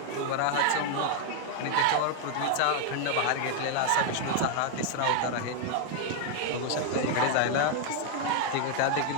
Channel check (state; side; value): different; both; correlation 0.01